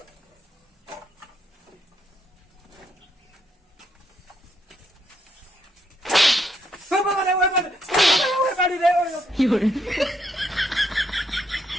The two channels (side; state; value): both; normal; correlation 0.75